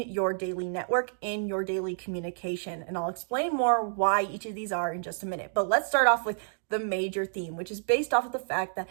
daily network, in your daily communication. And I'll explain more why each of these are in just a minute. But let's start off with the major theme, which is based off of the fact that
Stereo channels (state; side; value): silent; left; digital silence